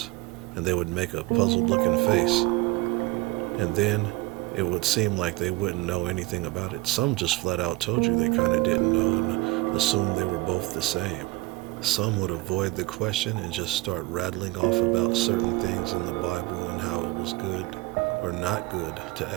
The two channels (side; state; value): left; quieter; 21.0 dB